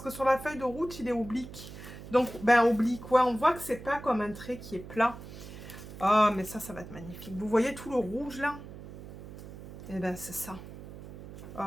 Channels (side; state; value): right; noise; hum, 14 dB below the sound